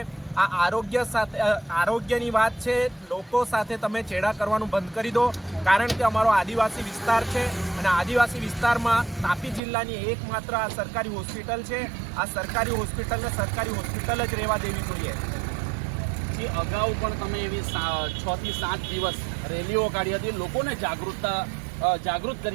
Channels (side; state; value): left; drops out; at 9.6 s